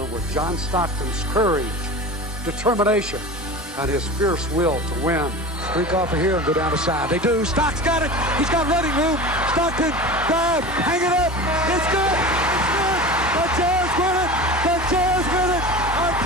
John Stockton's courage, determination, and his fierce will to win. Streak off of here and go down the side. They do. Stock's got it. He's got running room. Stockton, drive, hang it up. It's good. It's good. The Jazz win it. The Jazz win it. I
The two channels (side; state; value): both; normal; correlation 0.32